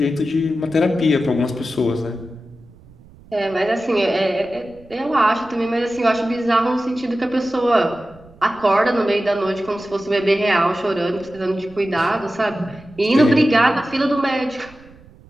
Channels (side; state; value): right; noise; rumble, 24 dB below the sound